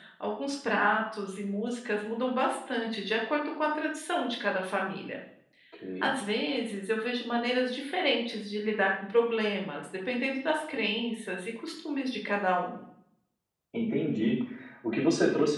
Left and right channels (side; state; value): both; identical; correlation 1.00